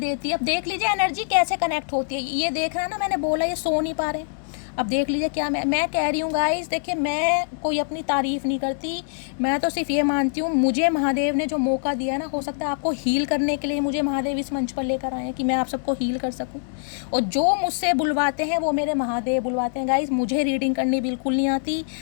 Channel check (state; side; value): silent; right; digital silence